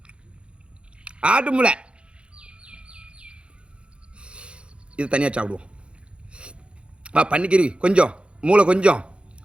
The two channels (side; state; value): left; late; 0.057 ms